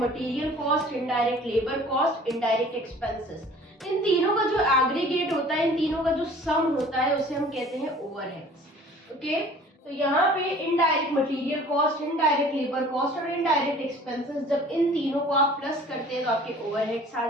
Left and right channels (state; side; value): normal; both; correlation 0.48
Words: cost, indirect labour cost, indirect expenses, इन तीनों का जो एग्रीगेट होता है, इन तीनों का जो सम होता है, उसे हम कहते हैं ओवरहेड्स। ओके, तो यहाँ पे indirect material cost, indirect labour cost और इनडायरेक्ट एक्सपेंसेस, जब इन तीनों को आप प्लस करते हैं तो आपके ओवरहेड्स आ